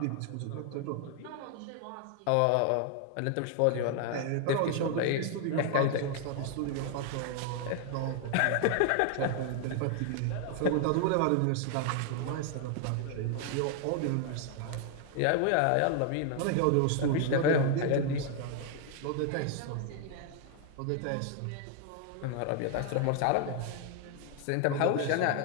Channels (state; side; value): different; both; correlation 0.00